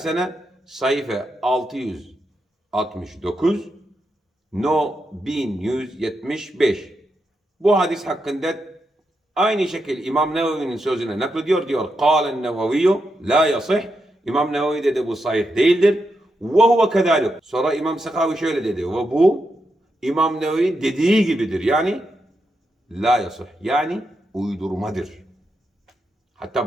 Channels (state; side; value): normal; both; correlation 0.85